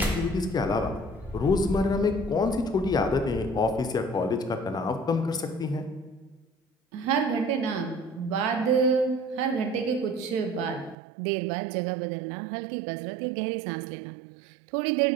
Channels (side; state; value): left; drops out; at 11.0 s